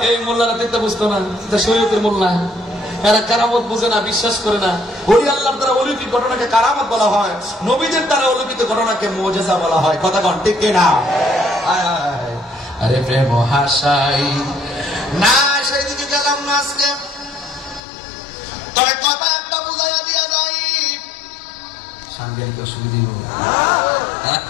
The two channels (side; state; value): right; drops out; at 17.8 s